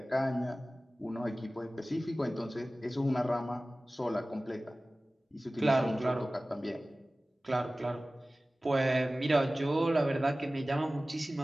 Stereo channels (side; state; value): both; normal; correlation 0.97